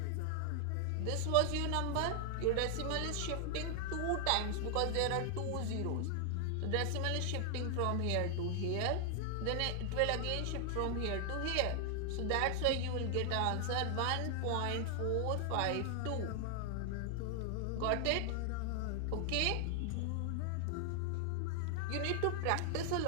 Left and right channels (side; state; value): both; different; correlation 0.00